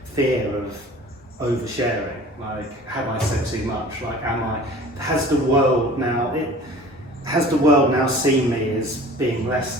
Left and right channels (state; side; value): normal; both; correlation 0.45